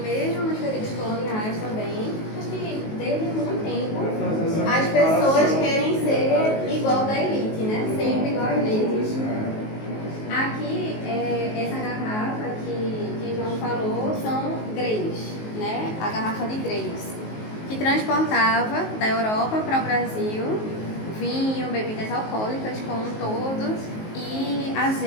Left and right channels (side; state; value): right; late; 19 ms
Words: nos períodos coloniais também, acho que desde muito tempo, as pessoas querem ser igual da elite, né? Sempre igual à elite. Aqui, essa garrafa que João falou são greys, né? A garrafa de greys, que transportava da Europa para o Brasil vinho, bebidas alcoólicas como um todo e